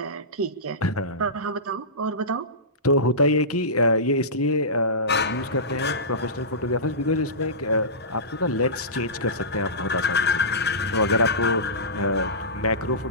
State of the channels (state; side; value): normal; both; correlation -0.20